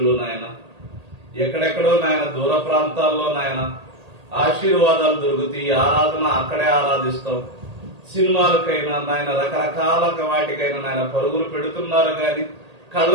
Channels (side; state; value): left; late; 1.8 ms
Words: నాయన ఎక్కడెక్కడో నాయన దూర ప్రాంతాల్లో నాయన ఆశీర్వాదాలు దొరుకుతాయి, ఆరాధన అక్కడే ఆరాధిస్తాం, సినిమాలకైనా నాయన రకరకాల వాటికైనా నాయన పరుగులు పెడుతున్నారు కానీ కళ్ళ